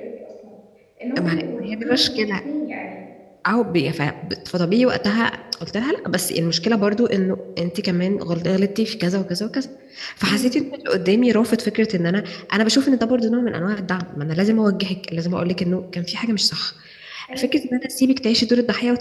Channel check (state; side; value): identical; both; correlation 1.00